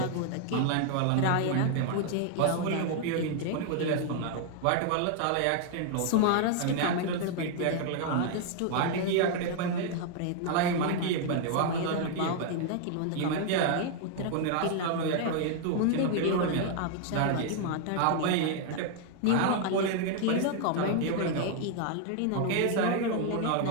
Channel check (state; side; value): different; both; correlation 0.00